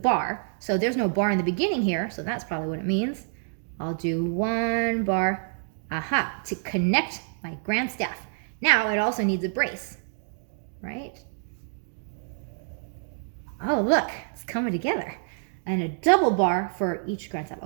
so there's no bar in the beginning here, so that's probably what it means. I'll do one bar, to connect my grand staff. Now it also needs a brace, right? Oh, look, it's coming together. And a double bar for each grand staff.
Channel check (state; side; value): silent; left; digital silence